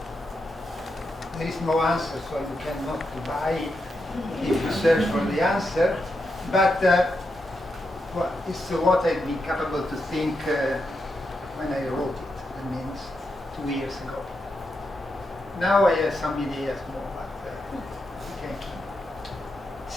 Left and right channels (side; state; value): both; normal; correlation 0.85